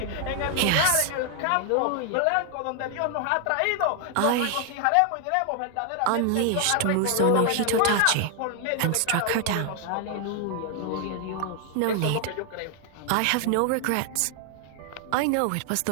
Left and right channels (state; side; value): different; both; correlation 0.00